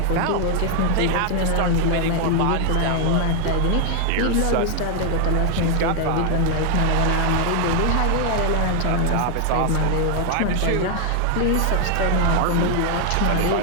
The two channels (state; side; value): different; both; correlation 0.00